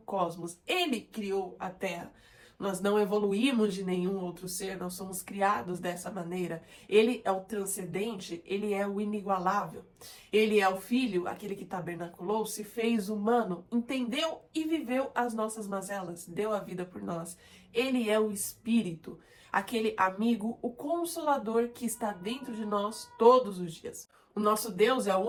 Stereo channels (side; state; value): both; identical; correlation 1.00